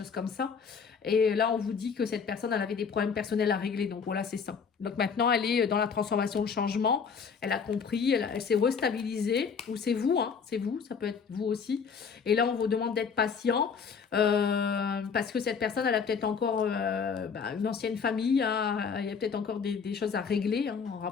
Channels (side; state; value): right; quieter; 6.0 dB